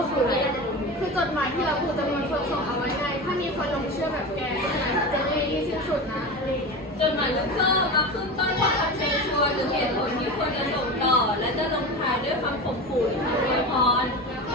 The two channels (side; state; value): both; normal; correlation 0.26